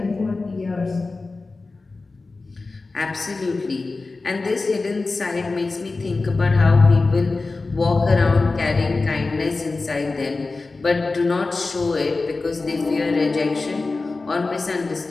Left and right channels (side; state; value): right; quieter; 3.7 dB